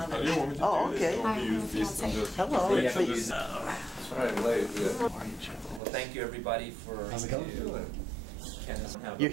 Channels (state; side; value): drops out; left; at 5.8 s